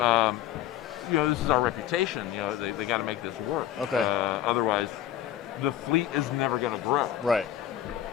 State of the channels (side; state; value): right; quieter; 11.6 dB